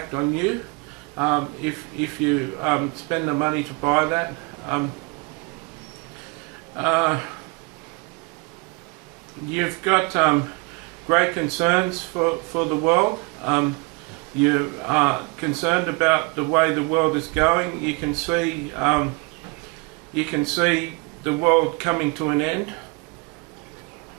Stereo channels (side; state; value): left; quieter; 28.4 dB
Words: on you if you spend the money to buy that. You've got great concerns for the world. You are concerned about the way the world is going. You can see the world coming to an end.